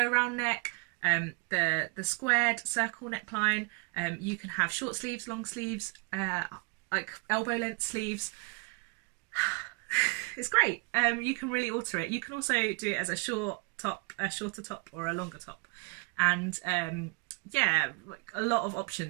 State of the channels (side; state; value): left; quieter; 30.5 dB